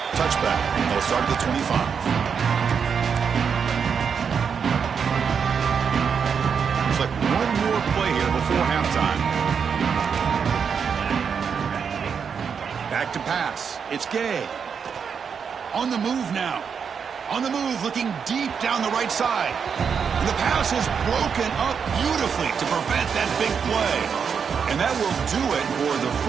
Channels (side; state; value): left; quieter; 6.6 dB